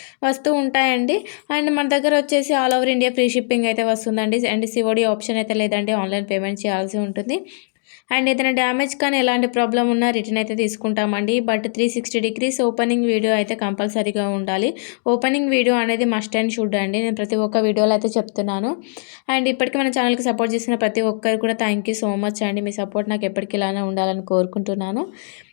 వస్తూ ఉంటాయండి. అండ్ మన దగ్గర వచ్చేసి all over India free shipping అయితే వస్తుందండి. అండ్ సిఓడి ఆప్షన్ అయితే లేదండి, ఆన్లైన్ పేమెంట్ చేయాల్సి ఉంటుంది. అండ్ ఏదైనా డ్యామేజ్ కానీ ఎలాంటి ప్రాబ్లం ఉన్నా రిటర్న్ అయితే తీసుకుంటామండి. బట్ 360 డిగ్రీస్ ఓపెనింగ్ వీడియో అయితే కంపల్సరీగా ఉండాలి. ఓపెనింగ్ వీడియో అనేది మస్ట్ అండ్ షుడ్ అండి. నేను ప్రతి ఒక్క వీడియోలో అయితే చెప్తున్నాను. అండ్ ఇప్పటికీ మన ఛానల్కి సపోర్ట్ చేసిన ప్రతి ఒక్కరు కూడా థ్యాంక్ యూ సో మచ్ అండి. మీ సపోర్ట్ నాకు ఎప్పటికీ ఇలానే ఉండాలని కోరుకుంటున్నాను.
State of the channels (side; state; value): right; silent; digital silence